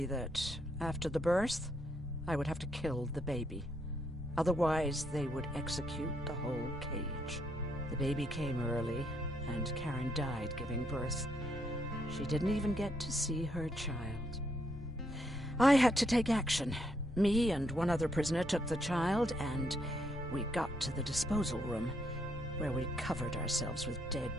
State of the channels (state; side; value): normal; both; correlation 0.75